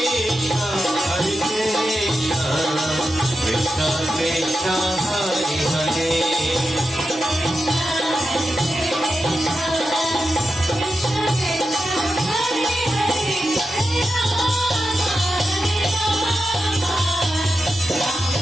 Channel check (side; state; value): both; normal; correlation 0.90